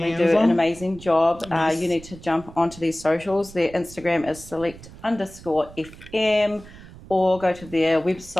do an amazing job. You need to jump onto their socials. Their Instagram is select_FM, or go to their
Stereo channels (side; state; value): right; noise; rumble, 18 dB below the sound